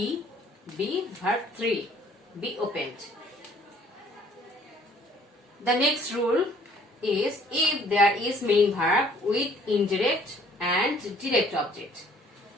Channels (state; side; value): normal; both; correlation 0.59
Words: verb 3, be opened. The next rule is if there is main verb with indirect and direct object.